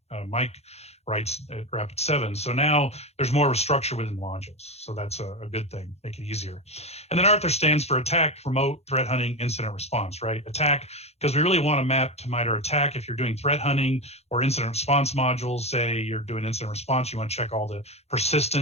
Mike writes at Rapid7. So now there's more of a structure within the modules. So that's a good thing, make it easier. And then ArTHIR stands for Attack, Remote, Threat Hunting, Incident Response, right? Attack, because we really want to map to MITRE ATT&CK. If you're doing threat hunting or incident response modules, say you're doing incident response, you want to check all the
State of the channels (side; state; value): right; late; 0.31 ms